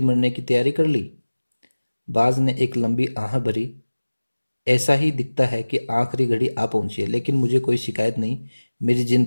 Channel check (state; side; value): inverted; both; correlation -1.00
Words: की तैयारी कर ली? बाज ने एक लंबी आह भरी। ऐसा ही दिखता है कि आखिरी घड़ी आ पहुंची है, लेकिन मुझे कोई शिकायत नहीं। मेरी